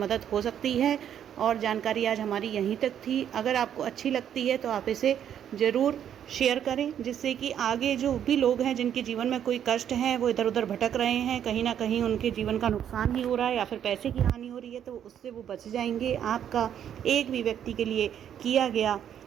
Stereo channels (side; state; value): left; quieter; 9.5 dB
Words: हो सकती है और जानकारी आज हमारी यहीं तक थी। अगर आपको अच्छी लगती है तो आप इसे ज़रूर शेयर करें, जिससे कि आगे जो भी लोग हैं जिनके जीवन में कोई कष्ट है, वो इधर उधर भटक रहे हैं, कहीं ना कहीं उनके जीवन का नुकसान ही हो रहा है या फिर पैसे की हानि हो रही है, तो उससे वो बच जाएंगे। आपका एक भी व्यक्ति के लिए किया गया